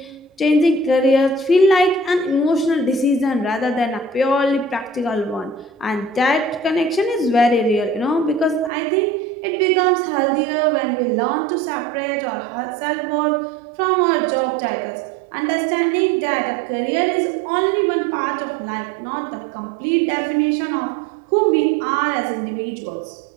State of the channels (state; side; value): drops out; left; at 8.7 s